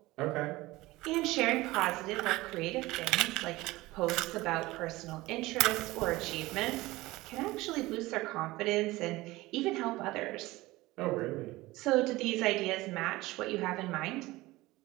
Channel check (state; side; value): quieter; left; 19.4 dB